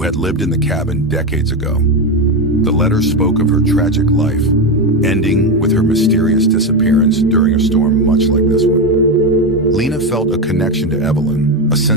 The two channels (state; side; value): normal; both; correlation 0.12